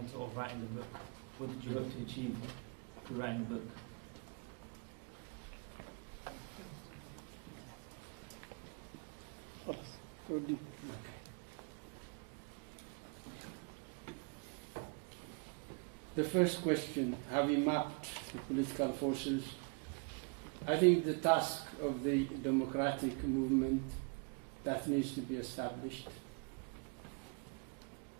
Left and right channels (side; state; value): left; quieter; 35.0 dB